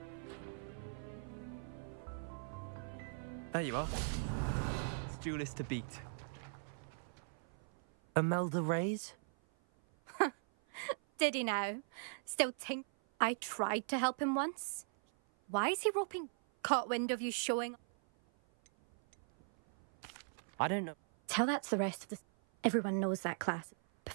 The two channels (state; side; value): silent; left; 51 dB below the other